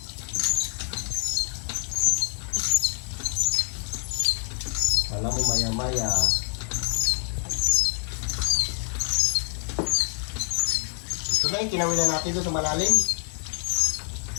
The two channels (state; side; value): silent; right; 60 dB below the other